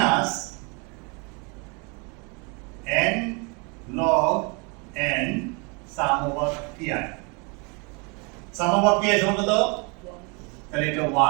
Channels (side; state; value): left; quieter; 32.1 dB